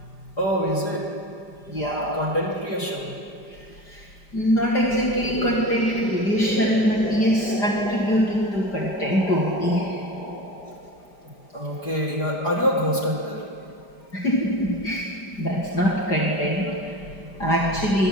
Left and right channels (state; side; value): late; right; 5.0 ms